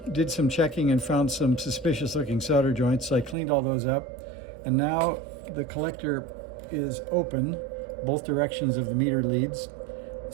did some checking and found some suspicious looking solder joints. So I cleaned all those up, and now the collector is open, both directions of the meter leads.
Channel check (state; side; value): drops out; left; at 3.4 s